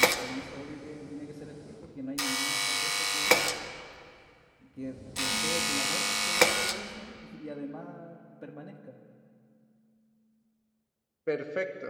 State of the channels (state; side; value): identical; both; correlation 1.00